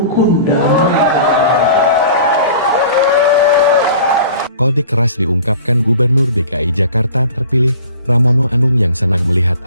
dah. Kode keras diungkapkan Gubernur DKI Jakarta terpilih, Pramono Anung yang senang melihat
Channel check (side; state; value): both; inverted; correlation -0.44